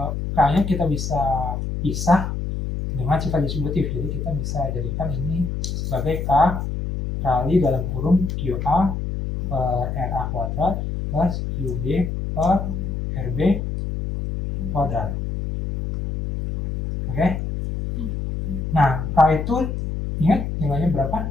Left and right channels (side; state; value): left; noise; hum, 3 dB below the sound